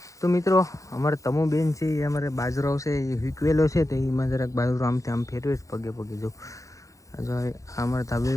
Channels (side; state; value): right; late; 0.16 ms